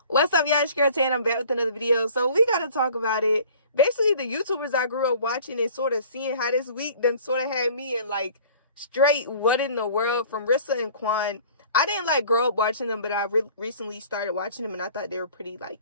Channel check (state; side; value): inverted; both; correlation -0.49